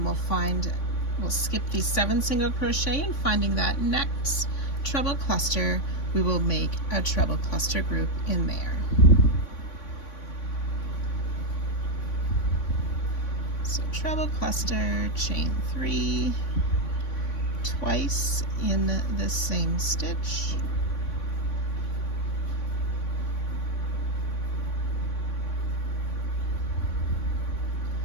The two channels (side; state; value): right; late; 3.5 ms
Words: we'll skip the 7 single crochet, and finding that next treble cluster, we will make a treble cluster group in there. So treble cluster, chain 3, twice in the same stitch,